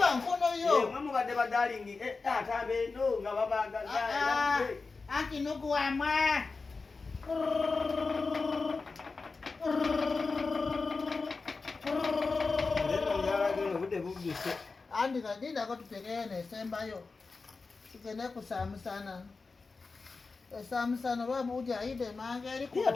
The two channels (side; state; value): right; quieter; 4.2 dB